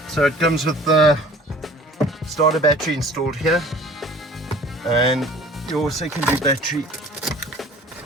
So it comes with the starter battery installed here, and your secondary battery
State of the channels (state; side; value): normal; both; correlation 0.47